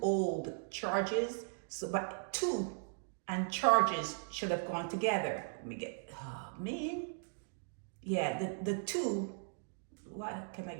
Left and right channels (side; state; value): left; silent; digital silence